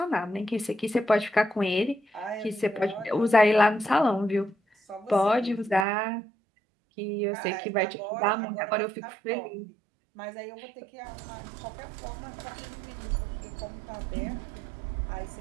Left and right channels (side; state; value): left; drops out; at 5.9 s